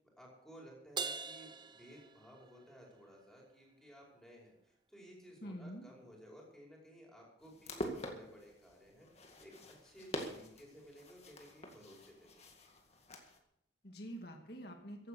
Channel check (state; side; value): normal; both; correlation 0.36